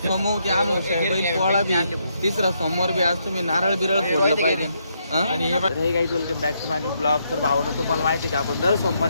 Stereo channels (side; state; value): both; inverted; correlation -0.77